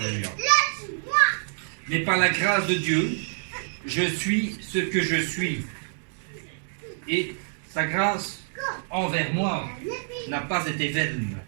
Mais par la grâce de Dieu, je suis ce que je suis. Et sa grâce envers moi n'a pas été vaine.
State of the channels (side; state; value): left; silent; digital silence